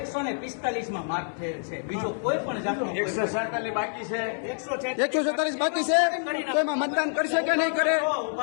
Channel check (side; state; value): right; silent; digital silence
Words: માર્ક થયેલ છે. બીજો કોઈ પણ જાતનો 147 બાકી છે. 147 બાકી છે. તો એમાં મતદાન કરશે કે નહીં કરે?